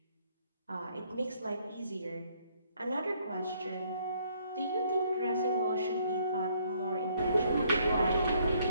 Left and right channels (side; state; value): both; inverted; correlation -0.67